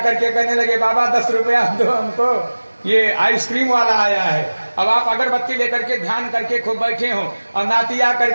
के कहने लगे बाबा 10 रुपया दो हमको, ये आइसक्रीम वाला आया है। अब आप अगरबत्ती लेकर के ध्यान करके खूब बैठे हो और नाती आकर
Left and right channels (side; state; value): both; inverted; correlation -1.00